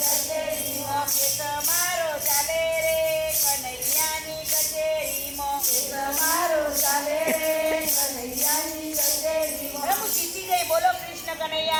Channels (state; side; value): identical; both; correlation 1.00